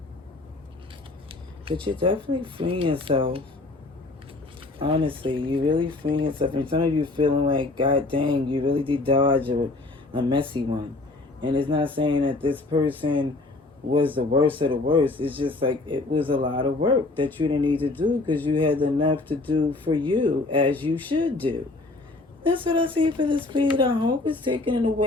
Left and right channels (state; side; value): quieter; right; 3.2 dB